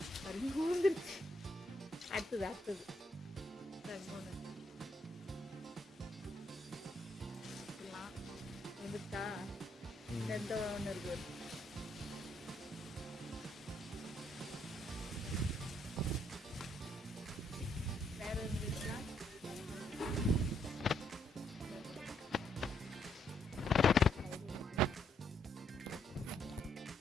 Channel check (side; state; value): both; normal; correlation 0.72